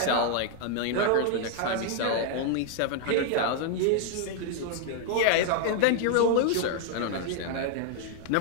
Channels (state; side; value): different; both; correlation 0.00